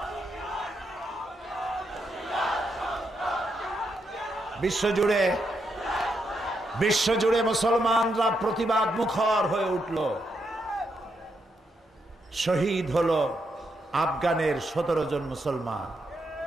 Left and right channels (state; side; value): normal; both; correlation 0.81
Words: বিশ্বজুড়ে মুসলমানরা প্রতিবাদ মুখর হয়ে উঠল। শহীদ হলো আফগানের 17 জন মুসলমান,